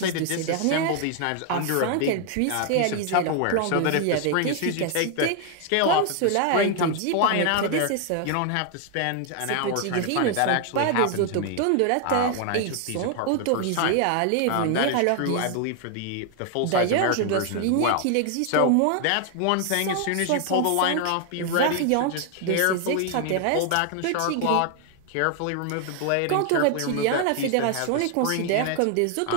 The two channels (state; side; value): different; both; correlation 0.00